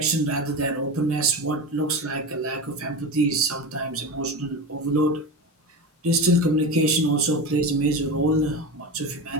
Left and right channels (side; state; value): both; normal; correlation 0.24